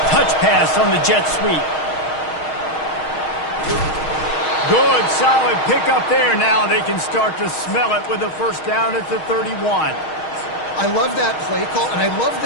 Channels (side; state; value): right; late; 6.4 ms